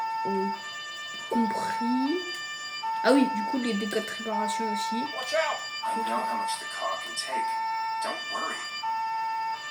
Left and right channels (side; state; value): both; identical; correlation 1.00